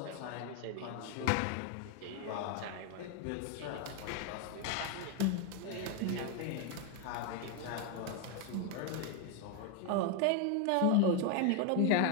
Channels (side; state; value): both; different; correlation 0.01